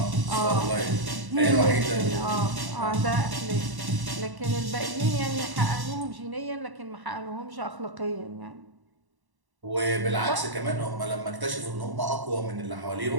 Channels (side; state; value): left; late; 1.1 ms